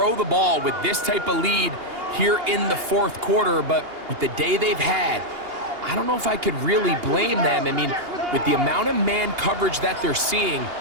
the ball with this type of lead here in the fourth quarter, but with the day they've had, I don't know if I could really blame them. I mean, with the amount of man coverage that they're seeing,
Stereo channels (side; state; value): left; late; 2.8 ms